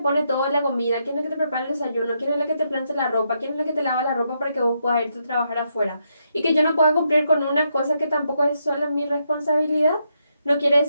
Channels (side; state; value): both; inverted; correlation -0.80